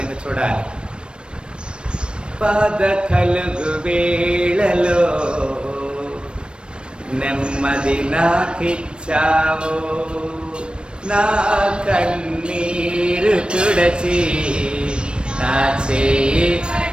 చూడాలి. బాధ కలుగు వేళలో నెమ్మది నాకిచ్చావు, నా కన్నీరు తుడచి నా చేయి.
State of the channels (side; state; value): left; late; 0.055 ms